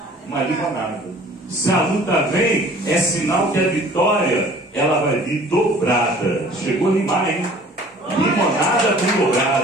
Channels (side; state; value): both; normal; correlation 0.50